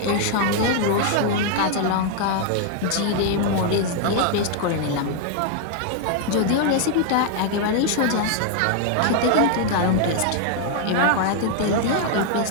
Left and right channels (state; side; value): different; both; correlation 0.00